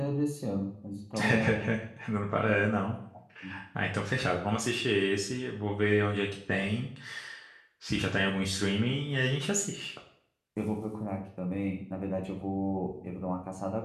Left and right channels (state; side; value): identical; both; correlation 1.00